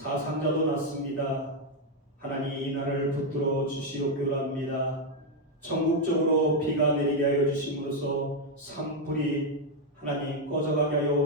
났습니다. 하나님, 이 나라를 붙들어 주시옵기로 합니다. 전국적으로 비가 내리게 하여 주심으로써 산불이 하나님 꺼져가게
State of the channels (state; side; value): normal; both; correlation 0.02